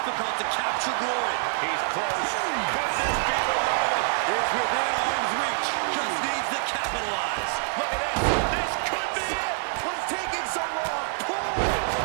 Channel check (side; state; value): left; silent; 61 dB below the other